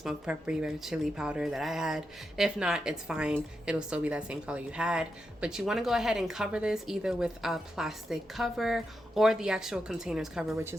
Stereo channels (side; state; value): both; normal; correlation 0.86